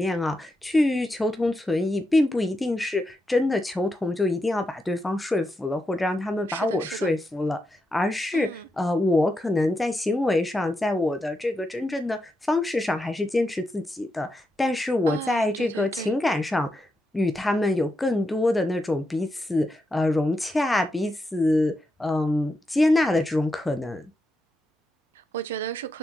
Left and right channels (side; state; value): both; normal; correlation 0.86